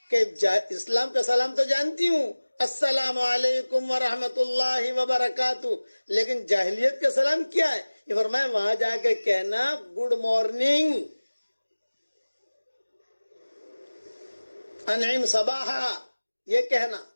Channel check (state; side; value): inverted; both; correlation -1.00